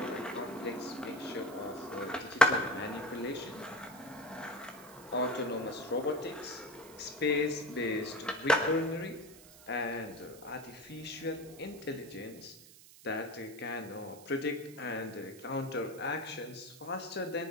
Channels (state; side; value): noise; right; hiss, 19 dB below the sound